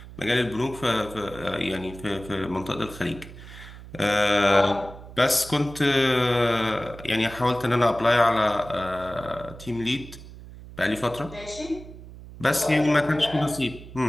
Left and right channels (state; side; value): noise; right; hum, 16 dB below the sound